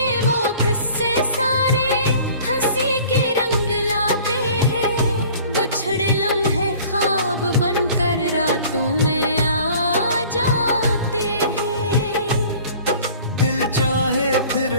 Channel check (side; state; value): both; inverted; correlation -0.48